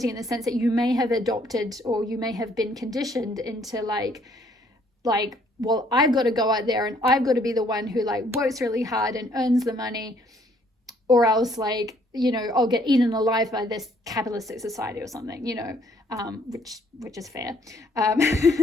in the sense that you may have adopted, or you may have been conditioned into like, well, I've got to go out there and I've got to be the one who like works really hard and earns the money, or else like, you know, I'll get eaten alive by this capitalistic society or something, you know, which is fair.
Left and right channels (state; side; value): normal; both; correlation 0.64